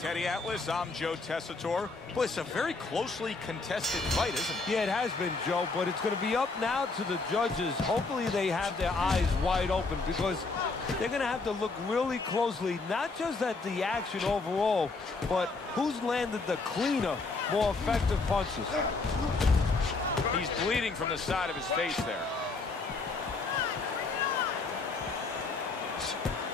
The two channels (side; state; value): right; quieter; 3.9 dB